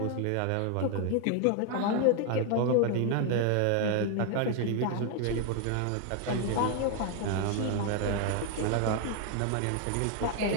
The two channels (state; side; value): different; both; correlation 0.01